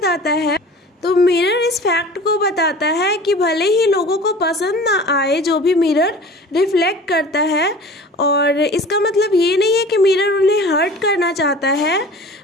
है। तो मिरर इस फैक्ट को बताता है कि भले ही लोगों को पसंद ना आए जो भी मिरर रिफ्लेक्ट करता है, और इसका मतलब ये नहीं है कि मिरर उन्हें हर्ट करना चाहता है।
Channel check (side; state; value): both; normal; correlation 0.41